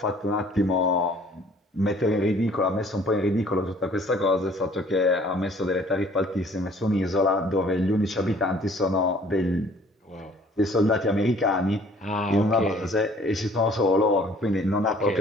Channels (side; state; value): both; normal; correlation 0.55